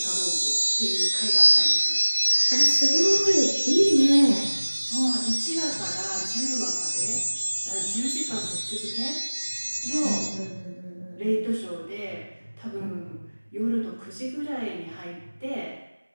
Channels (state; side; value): inverted; both; correlation -1.00